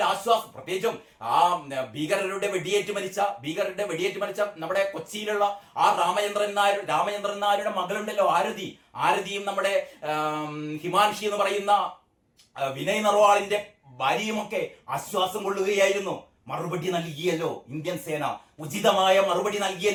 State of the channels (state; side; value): identical; both; correlation 1.00